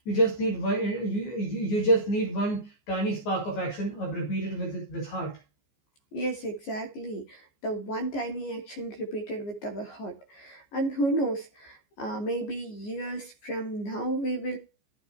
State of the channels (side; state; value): right; late; 14 ms